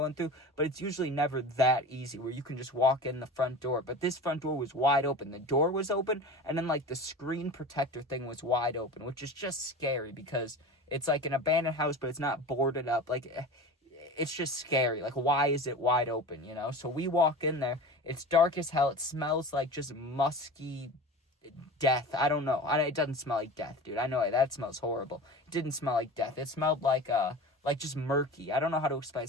in through, but it's usually never that easy where you can just walk in the front door. But this front door was wide open. The door was open, and then like the screen protector thing was wide open, which is just scary because it's like an abandoned house, but it's not boarded up. Like it's just scary. Like, why is it wide open, So we walk in there. It's dark as hell. It smells like just musky death. I don't know. It doesn't smell like death, dude. I know that smells horrible. It didn't smell like death. It smelled like just murky. I don't know how to explain. It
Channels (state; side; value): normal; both; correlation 0.34